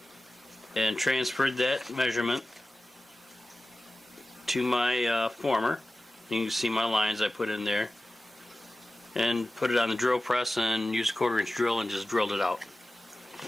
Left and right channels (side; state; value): both; normal; correlation 0.96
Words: and transferred that measurement to my former. You can see my lines I put in there, and put it on the drill press and used a 1/4 inch drill and just drilled it out.